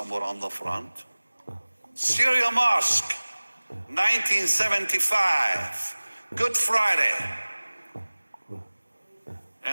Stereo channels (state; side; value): inverted; both; correlation -1.00